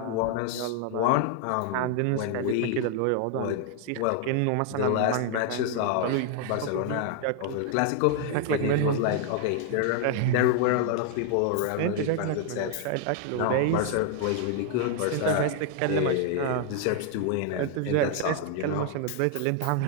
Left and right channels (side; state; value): both; different; correlation 0.00